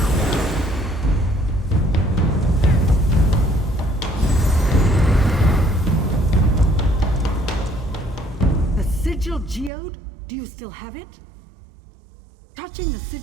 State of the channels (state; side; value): drops out; left; at 9.7 s